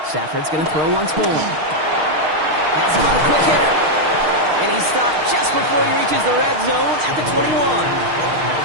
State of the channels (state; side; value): late; left; 6.5 ms